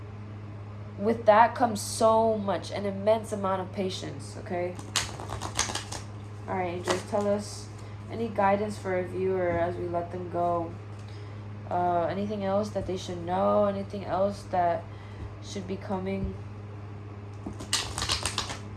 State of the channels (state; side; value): identical; both; correlation 1.00